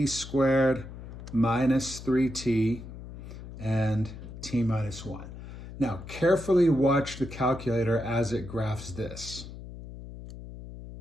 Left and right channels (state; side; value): noise; left; hum, 13 dB below the sound